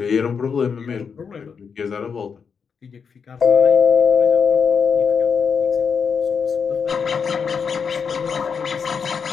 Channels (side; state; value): right; quieter; 6.2 dB